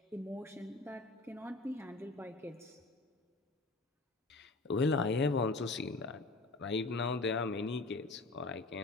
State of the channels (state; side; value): quieter; right; 3.3 dB